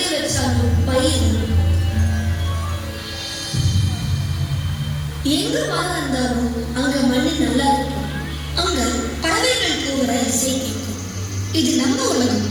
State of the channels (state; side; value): identical; both; correlation 1.00